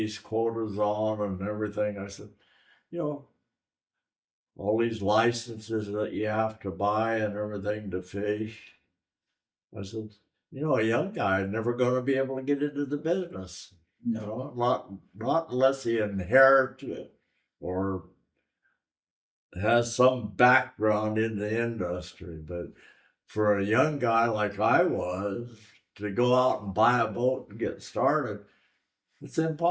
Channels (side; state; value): both; identical; correlation 1.00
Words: quotas on and everything, I said, you know, all these licenses that you have to buy and everything to fish. I said, you know, a young guy is never going to be able to get into the business. You know, not unless he inherits it or has some background in the industry. But for a young guy like I was, to go out and buy a boat and get started, it's